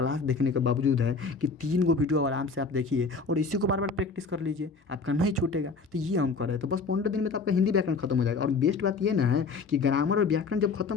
देखने के बावजूद है कि 3 को वीडियो आराम से आप देखिए और इसी को बार बार प्रैक्टिस कर लीजिए, आपका नहीं छूटेगा। तो ये हम कर रहे हैं, तो बस 15 दिन में तो आपका हिंदी व्याकरण खत्म हो जाएगा। और बेस्ट बात ये ना है कि ग्रामर और व्याकरण जब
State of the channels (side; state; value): right; quieter; 4.5 dB